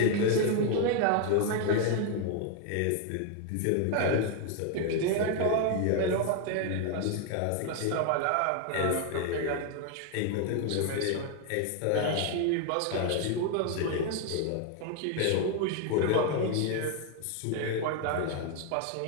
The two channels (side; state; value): both; different; correlation 0.01